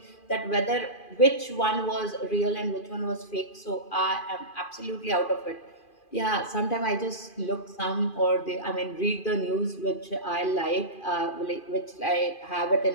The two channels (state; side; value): late; right; 2.4 ms